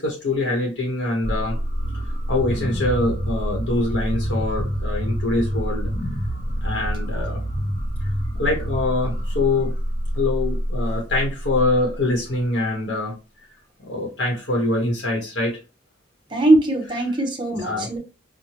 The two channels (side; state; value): both; normal; correlation 0.55